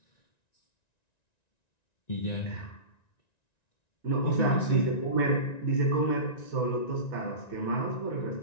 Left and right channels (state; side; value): late; right; 1.9 ms